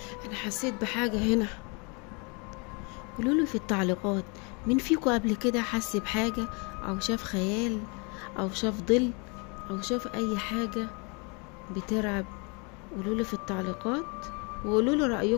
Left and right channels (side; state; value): right; quieter; 32.2 dB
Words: أنا حسيت بحاجة هنا، قولولي في التعليقات مين فيكم قبل كده حس بحاجة، أو شاف خيال، أو شاف ظل، أو شاف أي حاجة بترعب. قولولي في التعليقات، وقولولي